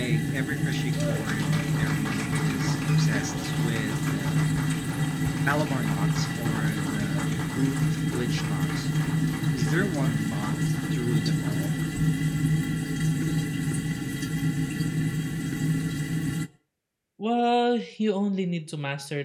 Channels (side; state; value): both; identical; correlation 1.00